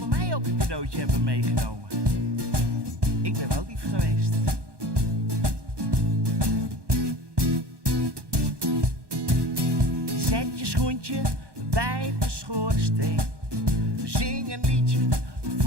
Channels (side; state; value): left; late; 1.2 ms